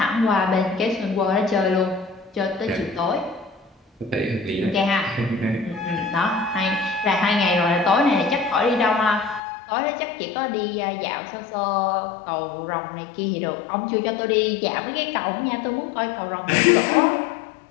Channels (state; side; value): drops out; right; at 9.4 s